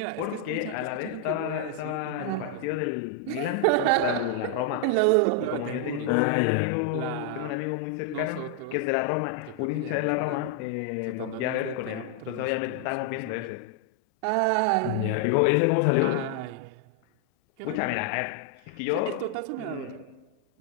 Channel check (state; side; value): different; both; correlation 0.00